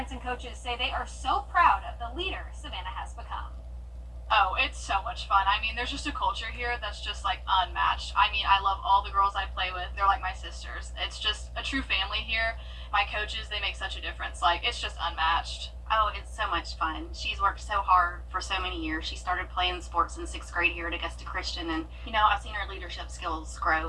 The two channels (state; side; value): identical; both; correlation 1.00